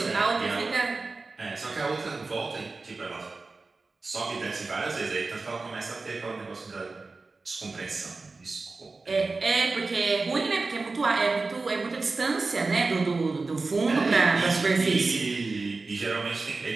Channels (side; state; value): left; quieter; 3.8 dB